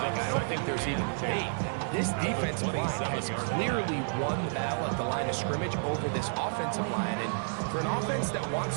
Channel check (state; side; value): silent; left; 57 dB below the other